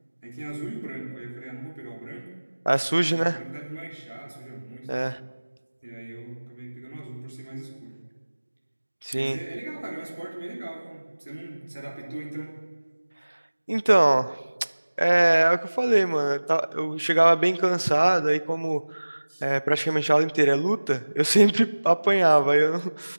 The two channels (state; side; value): inverted; both; correlation -1.00